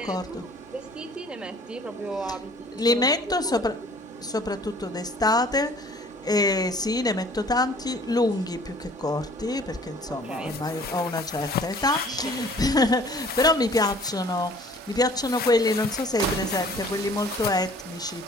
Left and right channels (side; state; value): both; normal; correlation 0.52